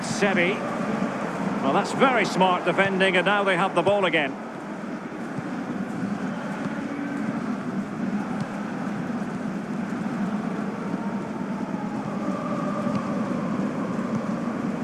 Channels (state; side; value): identical; both; correlation 1.00